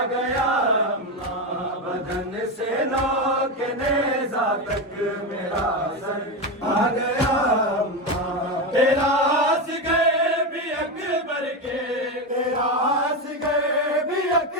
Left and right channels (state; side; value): normal; both; correlation 0.14